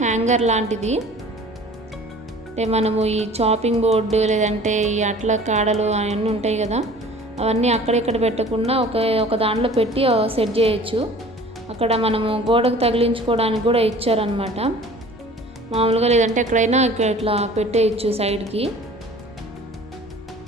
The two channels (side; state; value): both; normal; correlation 0.46